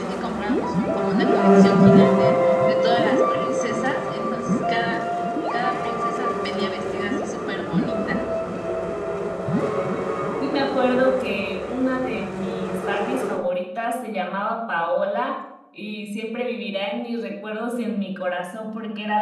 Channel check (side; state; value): both; identical; correlation 1.00